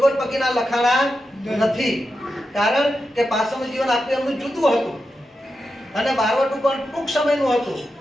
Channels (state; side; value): normal; both; correlation 0.89